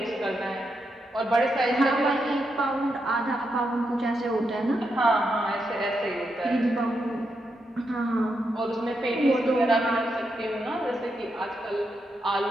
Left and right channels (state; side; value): normal; both; correlation 0.83